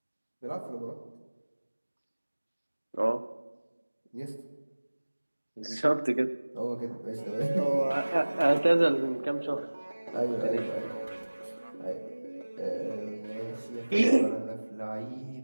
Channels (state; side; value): inverted; both; correlation -1.00